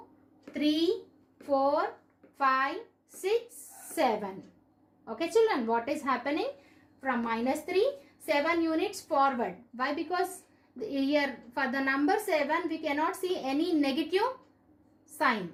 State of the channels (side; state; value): both; identical; correlation 1.00